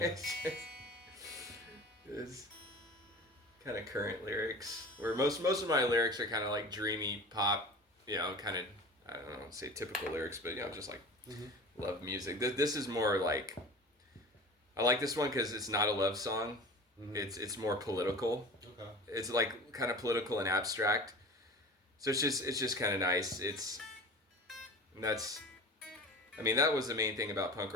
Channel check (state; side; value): normal; both; correlation 0.37